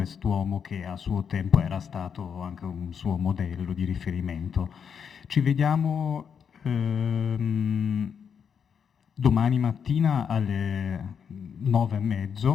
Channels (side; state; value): right; quieter; 7.1 dB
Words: che a suo tempo era stato anche un suo modello di riferimento. Ci vediamo domani mattina alle